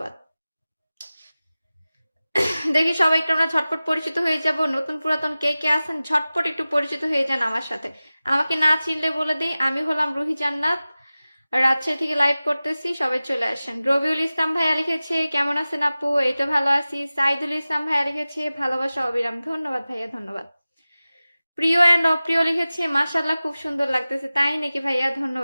দেখি সবাই একটু আমরা ঝটপট পরিচিত হয়ে যাব। নতুন পুরাতন কে কে আছেন ঝটপট একটু পরিচিত হয়ে যান আমার সাথে। আমাকে না চিনলে বলে দিই, আমি হলাম রুহি জান্নাত, রাজশাহী থেকে লাইভ করতেছি। সবাই চলে আসেন। রবিউল ইসলাম ভাইয়া লিখেছে কেমন আছেন আপু? এই তো ভালো আছি। সাইদুল ইসলাম ভাইয়া লিখেছে ভালোবাসা অবিরাম। ধন্যবাদ ভাইয়া, ধন্যবাদ। প্রিয় অ্যান্ড অপ্রিয় লিখেছে মাশাআল্লাহ খুব সুন্দর লাগতেছে। তাই নাকি ভাইয়া?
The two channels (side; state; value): both; inverted; correlation -0.97